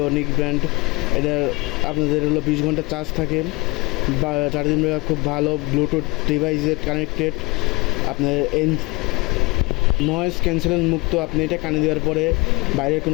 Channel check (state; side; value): quieter; right; 25.8 dB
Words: নিক ব্র্যান্ড। এটা আপনাদের হলো 20 ঘন্টা চার্জ থাকে বা চার্জিং ব্যাকআপ খুব ভালো, ব্লুটুথ ডিভাইসে কানেক্টেড, আপনার নয়েজ ক্যান্সেলেশন মুক্ত। আপনি এটা কানে দেওয়ার পরে বাইরের